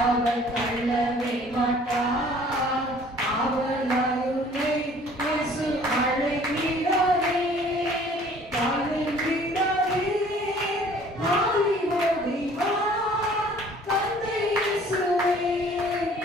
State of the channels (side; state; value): both; normal; correlation 0.53